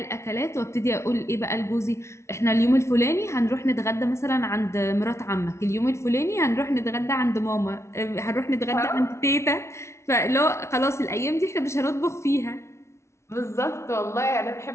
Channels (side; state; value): right; late; 0.13 ms